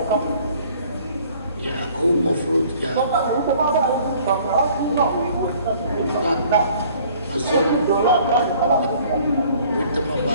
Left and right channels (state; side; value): inverted; both; correlation -0.55